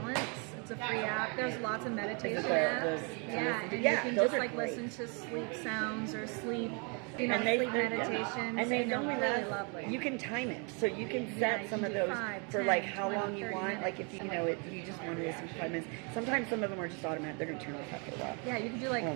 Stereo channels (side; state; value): left; quieter; 34.9 dB